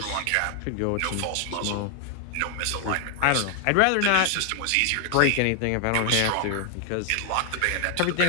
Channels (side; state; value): both; different; correlation 0.00